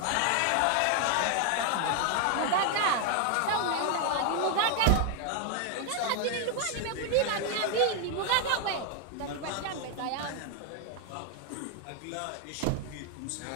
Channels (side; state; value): both; different; correlation 0.01